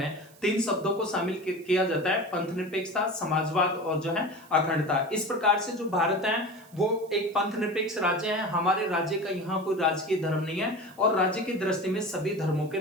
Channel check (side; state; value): right; noise; hiss, 26 dB below the sound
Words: 3 शब्दों को शामिल किया जाता है, पंथ निरपेक्षता, समाजवाद और जो है अखंडता। इस प्रकार से जो भारत है वो एक पंथ निरपेक्ष राज्य है। हमारे राज्य का यहाँ कोई राजकीय धर्म नहीं है और राज्य की दृष्टि में सभी धर्मों के